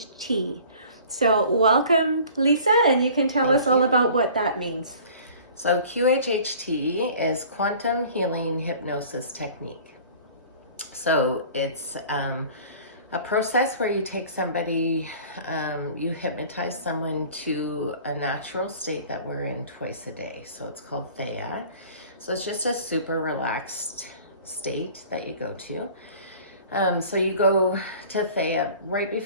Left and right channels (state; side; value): inverted; both; correlation -0.47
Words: So, welcome, Lisa, and you can tell us all about what that means. So QHHT is Quantum Healing Hypnosis Technique. So it's a process where you take somebody, you hypnotize someone to a natural state that we're in twice a day. So it's called Thea. So it's just a super relaxed state that you go to. So you go to Thea right